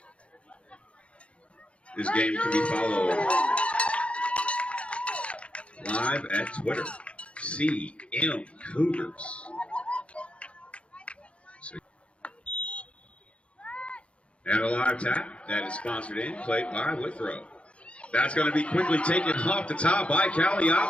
This game can be followed live at Twitter, CM Cougars. And a live tap that is sponsored in, played by Withrow. That's going to be quickly taken off the top by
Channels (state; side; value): late; right; 0.061 ms